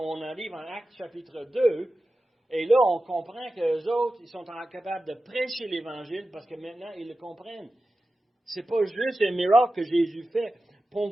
arrive en Actes chapitre 2, et là, on comprend qu'eux autres, ils sont capables de prêcher l'Évangile parce que maintenant, ils le comprennent. C'est pas juste un miracle que Jésus fait,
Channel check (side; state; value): both; normal; correlation 0.94